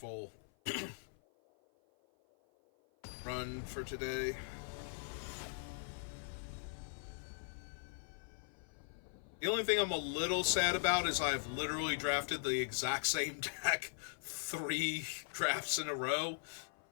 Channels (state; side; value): silent; right; 51 dB below the other